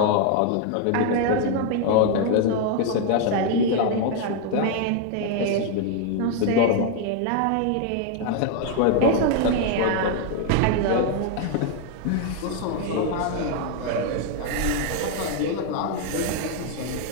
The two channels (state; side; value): different; both; correlation 0.01